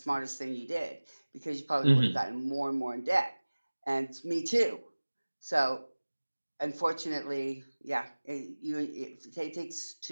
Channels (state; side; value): inverted; both; correlation -1.00